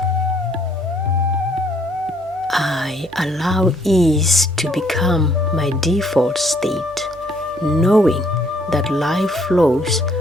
I allow ease to become my default state, knowing that life flows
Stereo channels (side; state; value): right; noise; hum, 25 dB below the sound